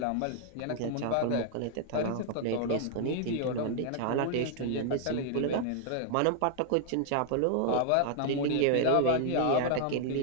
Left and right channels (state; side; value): different; both; correlation 0.00